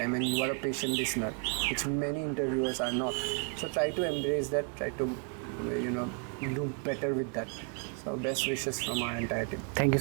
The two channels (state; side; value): quieter; left; 37.4 dB